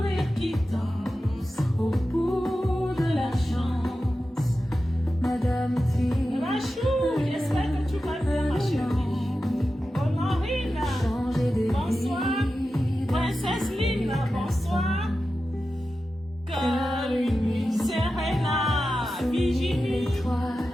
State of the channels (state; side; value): normal; both; correlation 0.92